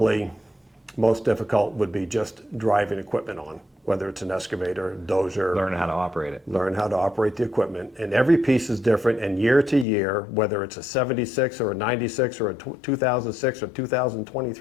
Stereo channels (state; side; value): drops out; right; at 9.9 s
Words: most difficult would be just driving equipment on, whether it's an excavator, dozer. Learn how to operate it. Learn how to operate the equipment. And every piece is different, and year to year, whether it's a 76 or a 96 or a 2006 or